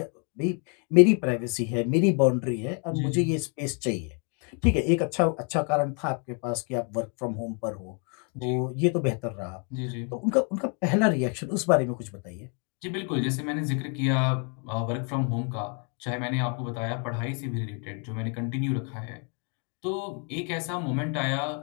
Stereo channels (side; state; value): right; quieter; 39.1 dB